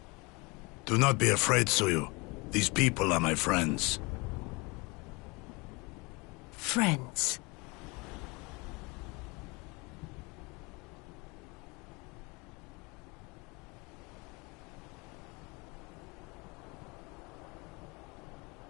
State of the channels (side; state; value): right; quieter; 27.1 dB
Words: Do not be afraid, Suyu. These people are my friends. Friends.